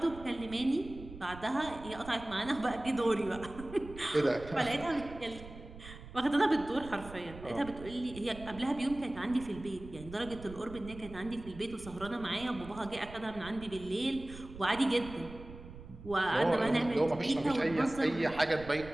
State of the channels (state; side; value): noise; right; rumble, 15 dB below the sound